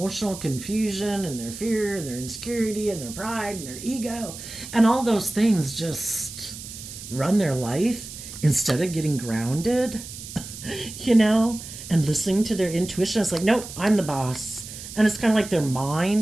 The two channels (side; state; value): right; noise; hiss, 12 dB below the sound